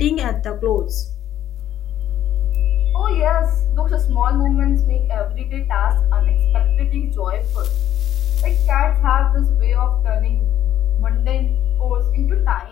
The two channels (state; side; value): quieter; right; 11.7 dB